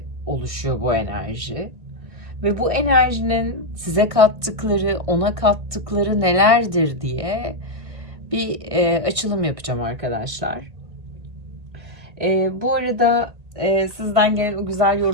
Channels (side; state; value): left; late; 1.6 ms